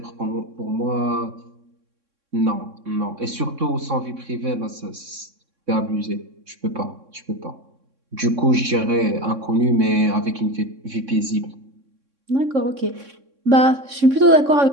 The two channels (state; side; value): late; left; 3.6 ms